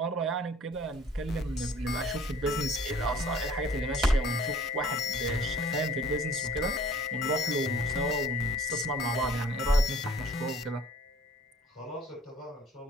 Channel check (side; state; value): both; normal; correlation 0.52